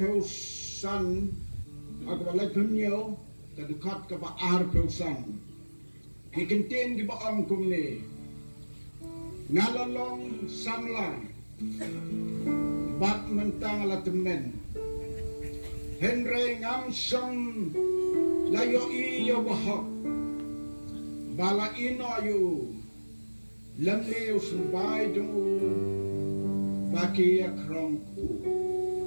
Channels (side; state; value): both; inverted; correlation -1.00